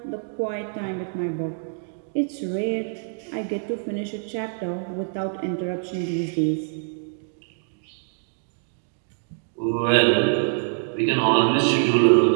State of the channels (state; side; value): silent; left; digital silence